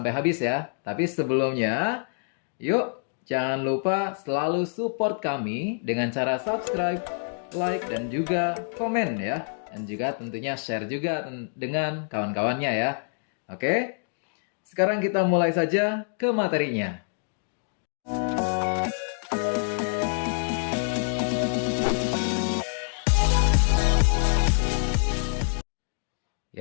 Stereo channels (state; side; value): silent; right; digital silence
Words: habis ya. Tapi sebelumnya, yuk, jangan lupa selalu support kami dengan cara subscribe, like, dan juga komen ya. Dan juga tentunya share juga dengan kawan-kawannya ya. Oke, sekarang kita mulai saja ke materinya.